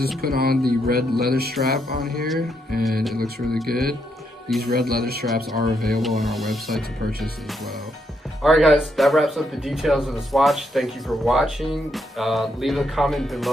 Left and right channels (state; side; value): normal; both; correlation 0.78